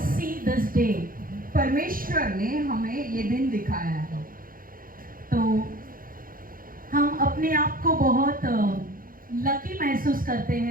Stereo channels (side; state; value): left; late; 0.41 ms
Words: see this day. परमेश्वर ने हमें ये दिन दिखाया है. तो हम अपने आप को बहुत लकी महसूस करते